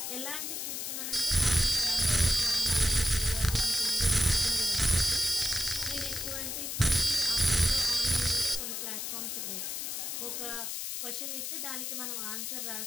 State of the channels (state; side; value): noise; left; hiss, 4 dB below the sound